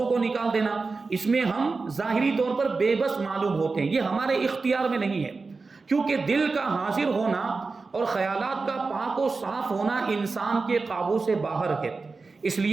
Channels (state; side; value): quieter; left; 4.1 dB